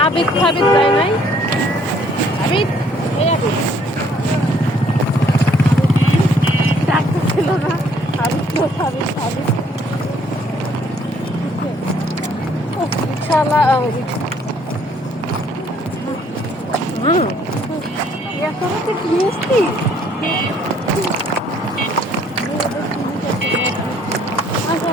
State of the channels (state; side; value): normal; both; correlation 0.63